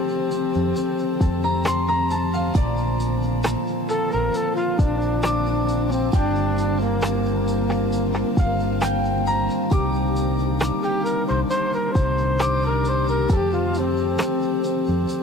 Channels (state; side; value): normal; both; correlation 0.57